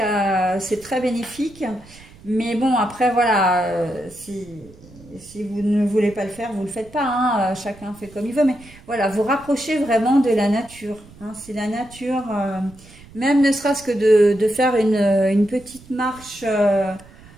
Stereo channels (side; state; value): right; noise; rumble, 22 dB below the sound